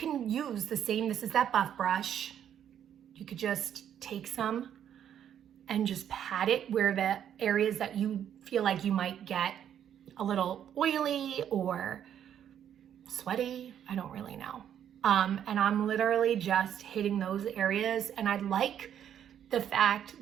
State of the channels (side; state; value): left; quieter; 9.6 dB